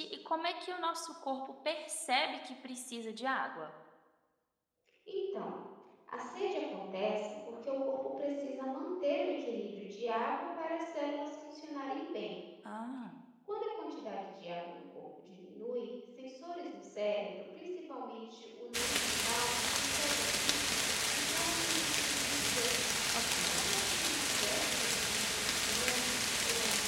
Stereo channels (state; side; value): identical; both; correlation 1.00